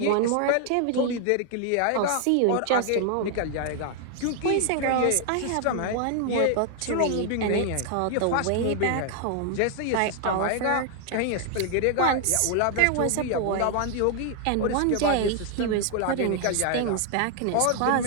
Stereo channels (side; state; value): both; different; correlation 0.00